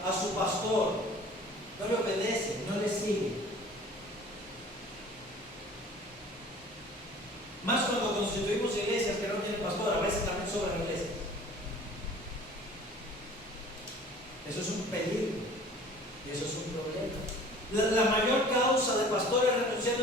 a su pastor, no le obedece, no le sigue. Más cuando constituimos iglesias que no tienen pastor, a veces también sobran iglesias. Eso es un peligro y eso es un problema. La mayor causa de pastores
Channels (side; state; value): both; normal; correlation 0.47